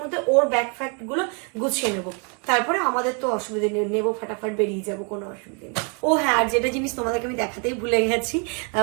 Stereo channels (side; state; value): left; quieter; 36.3 dB